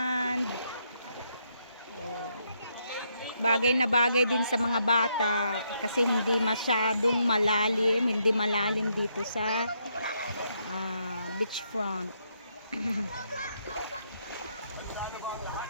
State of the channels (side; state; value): both; inverted; correlation -0.76